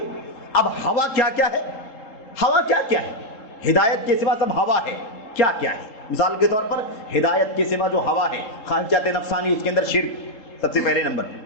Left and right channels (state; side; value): late; right; 3.8 ms